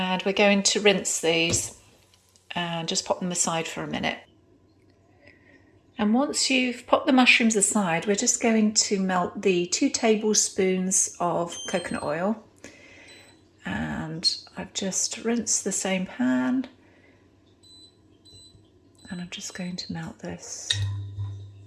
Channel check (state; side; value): identical; both; correlation 1.00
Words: we're going to rinse these and just pop them aside for a minute. And once you've popped the mushrooms aside, we're just going to melt the 2 tablespoons of coconut oil. And I've just rinsed the same pan, and I'm just going to melt this.